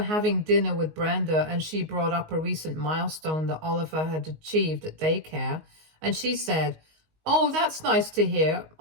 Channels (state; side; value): late; left; 19 ms